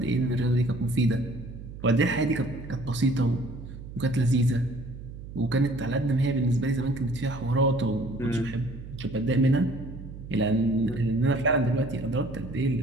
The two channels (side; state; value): right; noise; hum, 12 dB below the sound